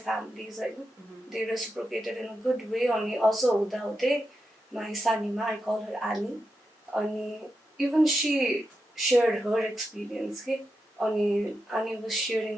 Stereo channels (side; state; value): both; normal; correlation 0.88